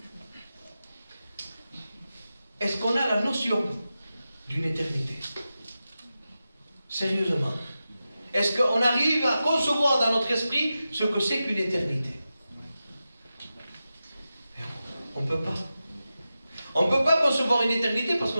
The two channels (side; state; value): both; inverted; correlation -0.92